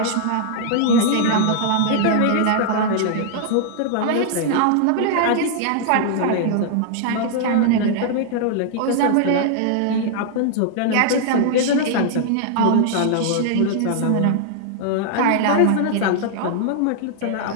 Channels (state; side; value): different; both; correlation -0.01